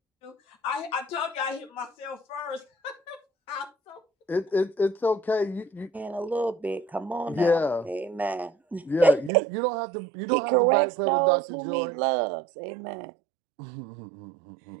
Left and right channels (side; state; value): left; drops out; at 9.3 s